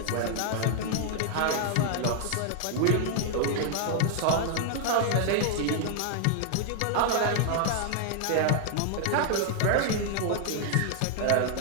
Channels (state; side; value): different; both; correlation 0.00